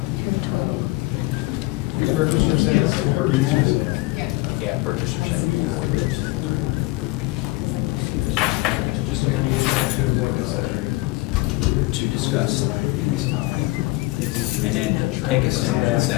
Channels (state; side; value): quieter; right; 21.4 dB